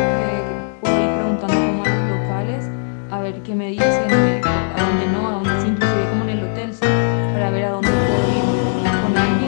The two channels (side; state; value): right; silent; digital silence